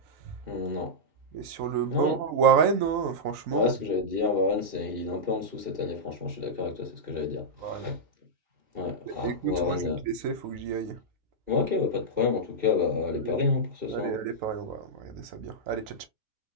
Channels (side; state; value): left; late; 3.9 ms